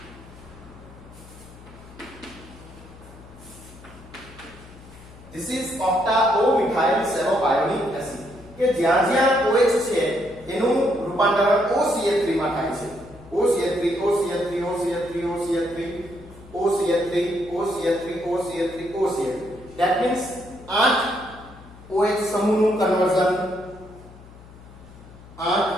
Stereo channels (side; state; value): left; noise; hum, 20 dB below the sound